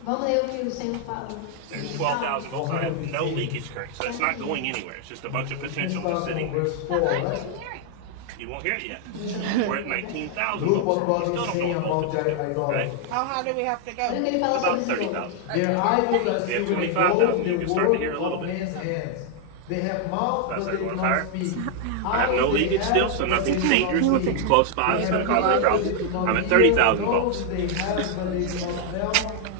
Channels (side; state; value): both; different; correlation 0.00